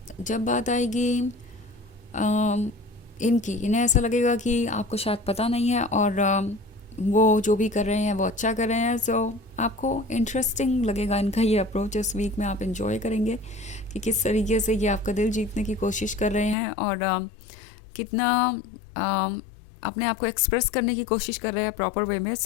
जब बात आएगी इन्हें ऐसा लगेगा कि आपको शायद पता नहीं है और वो जो भी कर रहे हैं वो अच्छा कर रहे हैं। आपको इंटरेस्टिंग लगेगा इनका ये अप्रोच। इस वीक में आप इंजॉय करेंगे कि किस तरीके से ये आपका दिल जीतने की कोशिश कर रहे हैं और कितना अपने आप को एक्सप्रेस करने की कोशिश कर रहे हैं प्रॉपर वे में।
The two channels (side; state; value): right; drops out; at 16.6 s